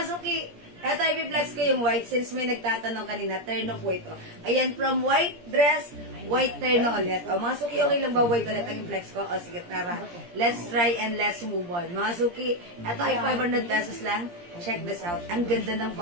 suki, eto i-flex ko yung white since may nagtatanong kanina, terno po ito. Ayan, from white dress, white terno ulit. Mga suki, okay lang ba white ulit ang i-flex ko? O sige, tara. Let's try and let's move on. Mga suki, eto ay 500 pesos lang. Check this out. Ang ganda ng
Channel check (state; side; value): late; left; 17 ms